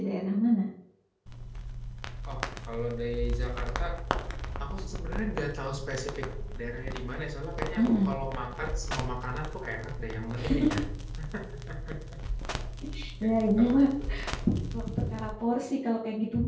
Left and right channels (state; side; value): identical; both; correlation 1.00